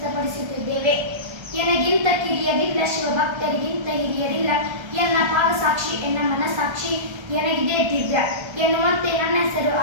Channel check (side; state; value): left; late; 1.3 ms